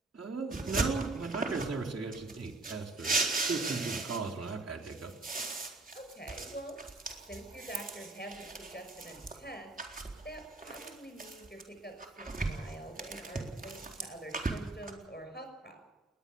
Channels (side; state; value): left; quieter; 3.1 dB